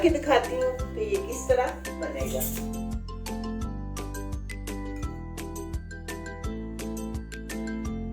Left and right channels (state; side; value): identical; both; correlation 1.00